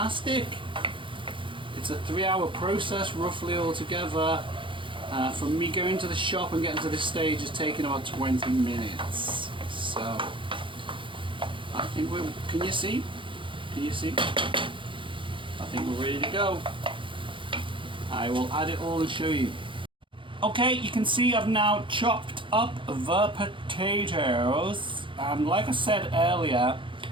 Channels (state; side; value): late; left; 0.24 ms